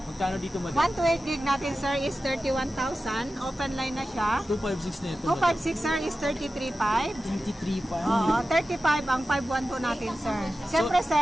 Magkano dito, madam? 128 gig natin, sir, is 31,000. Open line na siya. 256 na ito, 256, sir, is 33.5. 33.5. Oo, 35 ang 512 natin, sir. Siyempre,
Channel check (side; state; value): both; normal; correlation 0.94